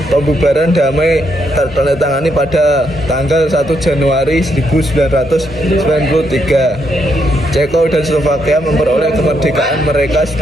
pembubaran damai tertandatangani pada tanggal 1 Januari 1993. Ceko dan Slovakia memperoleh kemerdekaan mereka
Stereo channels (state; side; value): normal; both; correlation 0.77